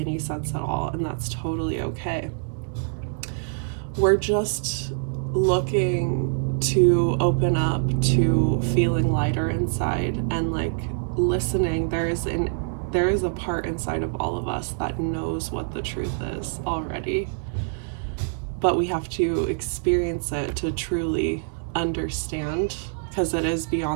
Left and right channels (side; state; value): left; silent; 62 dB below the other